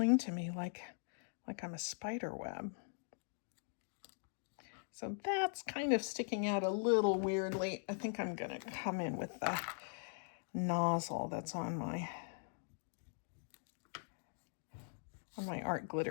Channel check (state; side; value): silent; right; digital silence